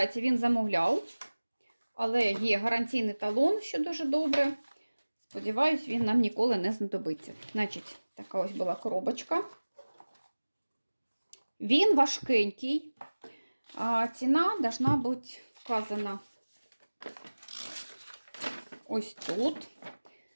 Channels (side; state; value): both; inverted; correlation -1.00